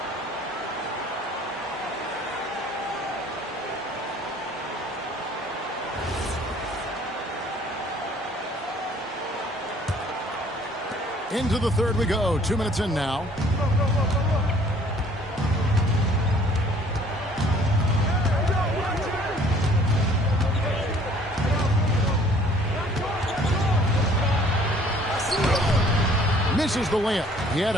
Into the third we go. 2 minutes in now. Misses the layup. He had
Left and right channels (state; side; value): normal; both; correlation 0.56